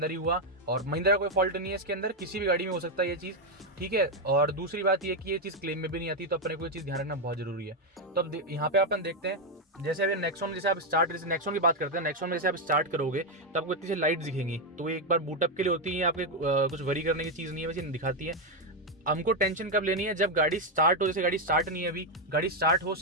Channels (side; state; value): both; normal; correlation 0.04